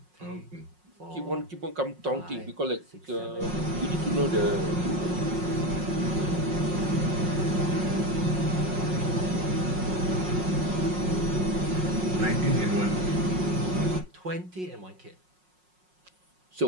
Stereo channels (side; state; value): left; late; 5.5 ms